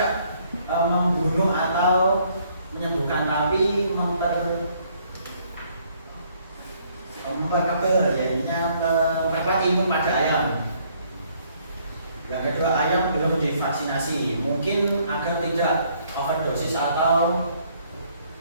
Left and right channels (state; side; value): inverted; both; correlation -0.66